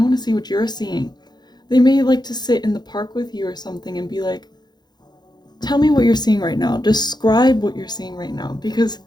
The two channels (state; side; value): late; right; 0.20 ms